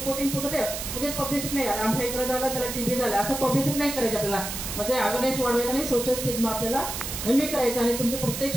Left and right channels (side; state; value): right; noise; hiss, 5 dB below the sound